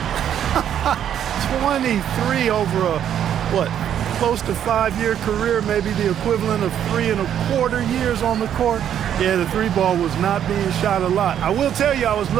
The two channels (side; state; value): left; quieter; 9.8 dB